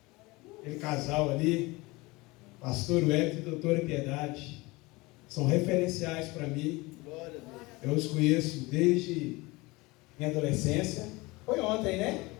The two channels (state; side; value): quieter; right; 23.0 dB